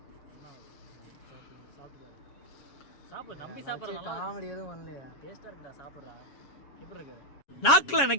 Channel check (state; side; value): late; right; 7.2 ms